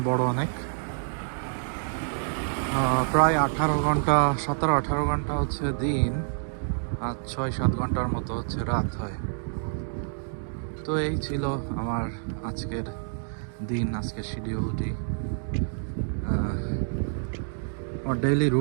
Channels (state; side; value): silent; left; digital silence